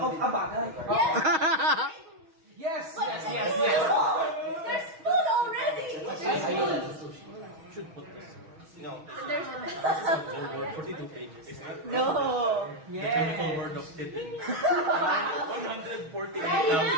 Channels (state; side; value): late; left; 6.3 ms